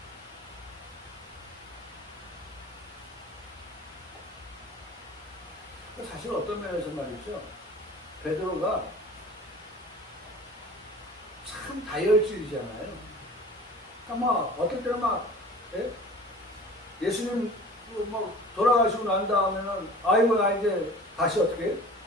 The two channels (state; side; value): normal; both; correlation 0.42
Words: 사실 어떤 면에서 말이죠. 베드로가 참 다혈질이잖아요. 그러니까 막 어떨 때는 막 예수님 막 돌아가시고 난 다음에는 아이고 나 이제 다시 어떻게